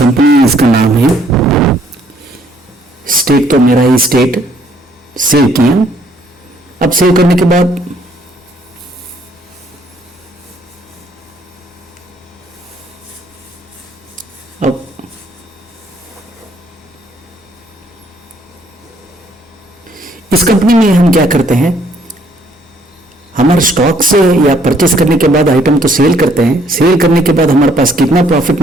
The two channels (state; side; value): normal; both; correlation 0.65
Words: इसका नाम है। स्टेट तो मेरा ही स्टेट, सेव किया। अब सेव करने के बाद अब इस कंपनी में हम क्या करते हैं, हमारे स्टॉक से या परचेस करने के बाद आइटम तो सेल करते हैं। सेल करने के बाद हमारे पास कितना प्रॉफिट